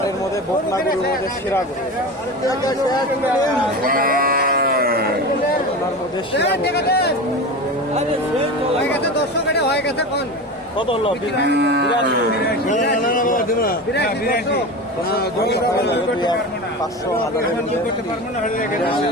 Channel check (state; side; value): normal; both; correlation 0.27